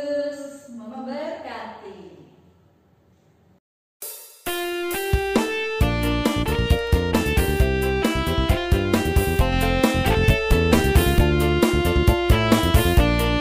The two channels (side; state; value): both; identical; correlation 1.00